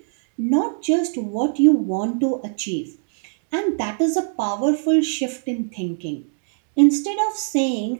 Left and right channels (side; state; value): left; silent; 63 dB below the other